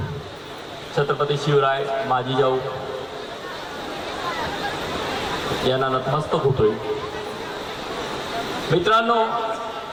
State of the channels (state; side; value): identical; both; correlation 1.00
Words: छत्रपती शिवराय माजी जाऊ यांना नतमस्तक होतोय. मित्रांनो,